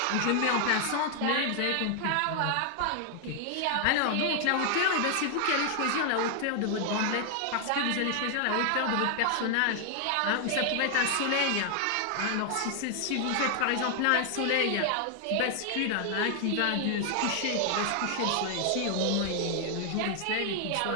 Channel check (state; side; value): different; both; correlation 0.00